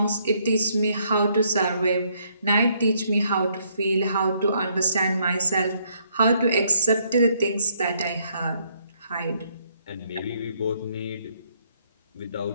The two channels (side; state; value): both; inverted; correlation -0.70